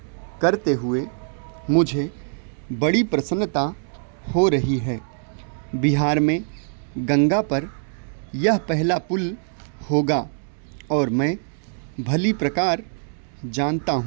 करते हुए मुझे बड़ी प्रसन्नता हो रही है। बिहार में गंगा पर यह पहला पुल होगा और मैं भली प्रकार जानता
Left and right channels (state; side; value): silent; left; 63 dB below the other